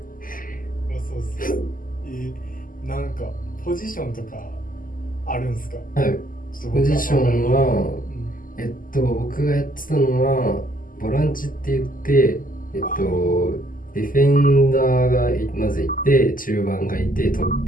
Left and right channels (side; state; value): right; late; 0.41 ms